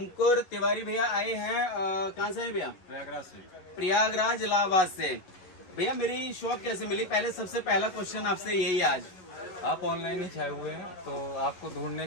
तिवारी भैया आए हैं कहाँ से हैं भैया? प्रयागराज से। प्रयागराज इलाहाबाद से। भैया मेरी शॉप कैसे मिली? पहले सबसे पहला क्वेश्चन आपसे यही आज। आप ऑनलाइन ही छाए हुए हैं तो आपको ढूंढने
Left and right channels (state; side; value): late; right; 11 ms